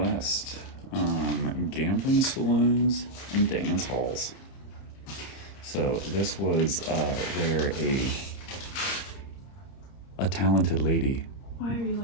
Gambling saloons and dance halls. So this was where a talented lady. Why are you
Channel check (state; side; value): late; right; 30 ms